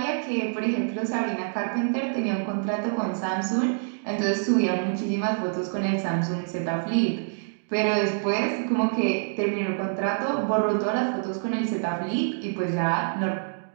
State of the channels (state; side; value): silent; left; digital silence